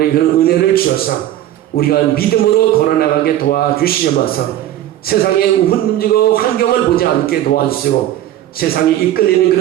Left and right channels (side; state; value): left; quieter; 12.8 dB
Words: 그런 은혜를 주셔서 우리가 믿음으로 걸어나가게 도와주시면서 세상의 흔들리고 환경을 보지 않게 도와주시고 세상에 이끌리는